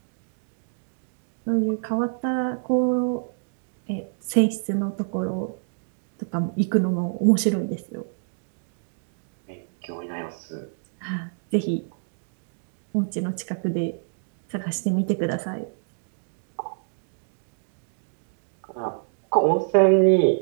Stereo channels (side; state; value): left; silent; digital silence